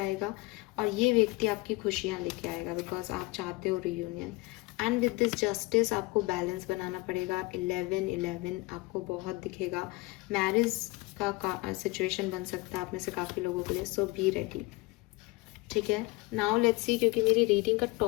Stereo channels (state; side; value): quieter; right; 22.5 dB